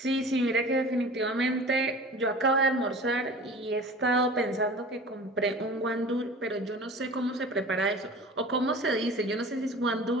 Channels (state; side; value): normal; both; correlation 0.39